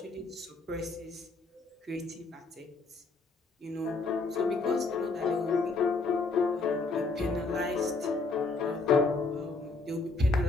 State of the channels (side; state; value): right; quieter; 3.7 dB